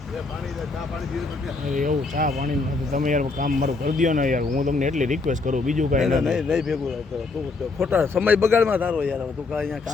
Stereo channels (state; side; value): quieter; right; 3.9 dB